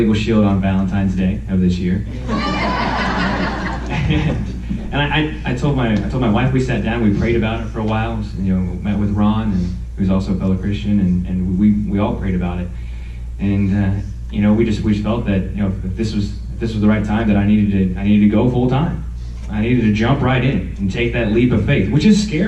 Shield on Valentine's Day of this year. And I told my wife, we sat down, we prayed about it for a while, you know, met with Ron, who's also a fellow Christian, and we all prayed about it. And you know, we just felt that, you know, if this was the right time, that I needed to go full time. I needed to jump right in and take that leap of faith, which is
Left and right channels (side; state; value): both; identical; correlation 1.00